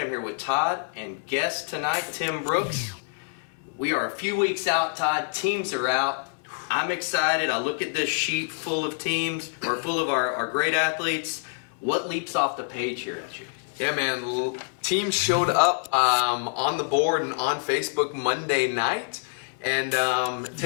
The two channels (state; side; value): silent; right; 61 dB below the other